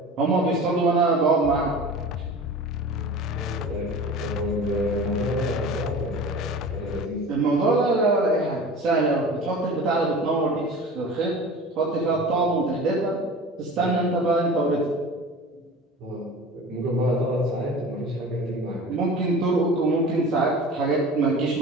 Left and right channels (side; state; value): both; normal; correlation 0.37